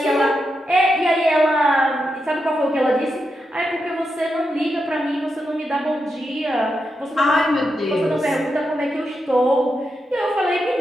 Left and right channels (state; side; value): normal; both; correlation 0.86